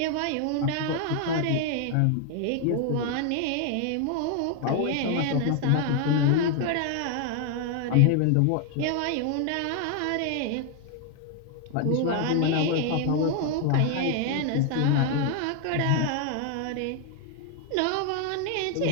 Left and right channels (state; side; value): different; both; correlation 0.00